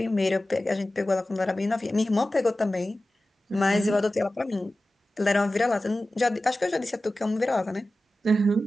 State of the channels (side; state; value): both; normal; correlation 0.95